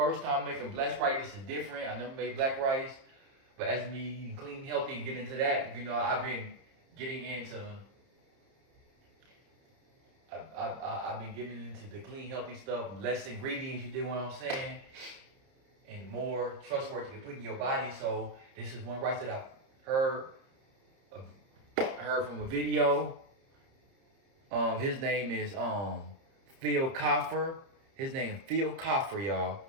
time making black rice. This is different. I never made black rice. But as me eating clean, healthy, and getting into that, you know, I've been getting into I've been getting into the clean, healthy stuff, less ingredients, you dig what I'm saying? And more trustworthy to put in your body. So this is one rice that I heard from a video. His name is Phil Coffer. His name Phil Coffer, y'all.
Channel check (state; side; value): late; left; 30 ms